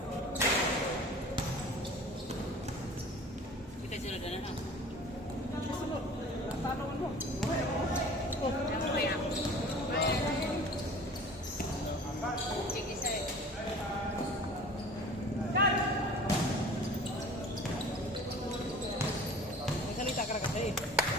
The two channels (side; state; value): both; normal; correlation 0.44